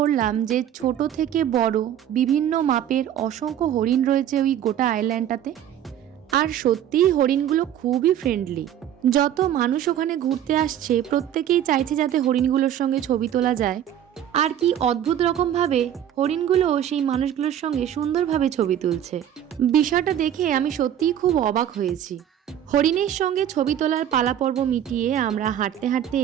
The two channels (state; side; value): quieter; left; 10.5 dB